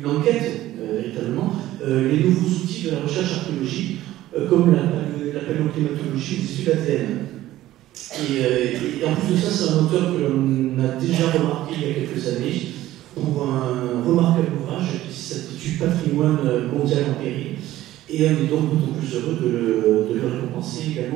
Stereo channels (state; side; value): quieter; left; 14.8 dB